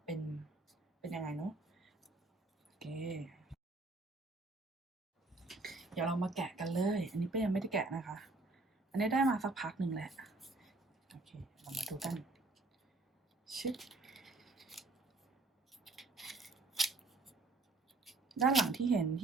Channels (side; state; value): left; quieter; 3.2 dB